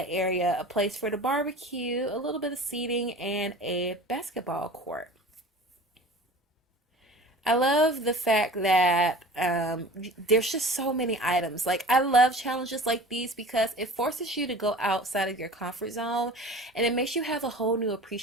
area a place for the barbecue, a little bit of seating, and a basketball court. I love the fact that there's just so many items. Like, I love challenges like these because it forces you to go outside of your comfort zone, and it makes you have a whole new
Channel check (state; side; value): normal; both; correlation 0.40